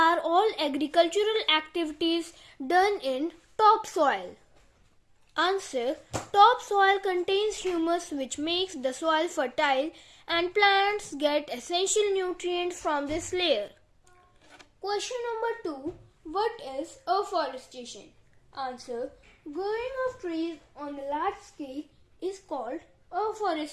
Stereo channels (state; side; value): identical; both; correlation 1.00